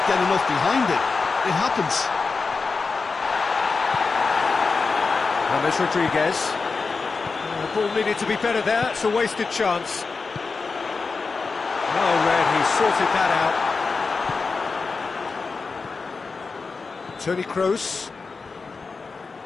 get enough behind it. It happens. James Rodriguez. The ball needed to be better there. It's a wasted chance. Well read, he sorted that out. Toni Kroos.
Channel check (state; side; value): quieter; right; 4.5 dB